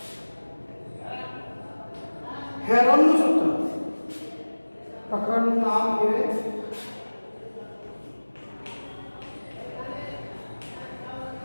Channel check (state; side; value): inverted; both; correlation -1.00